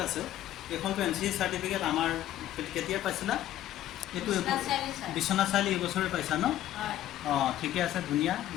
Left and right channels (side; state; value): right; quieter; 13.1 dB